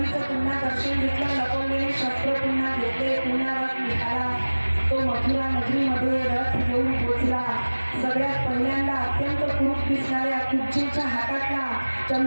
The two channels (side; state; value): both; inverted; correlation -1.00